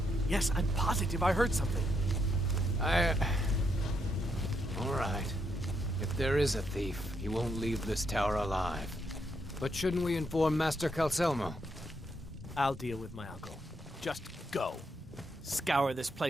Yes, I'm positive I heard something. All right. If there is a thief, he won't leave this tower alive. But shouldn't we inform Master Calcelmo? I'll deal with my uncle. Just go. Scour this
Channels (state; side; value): normal; both; correlation 0.78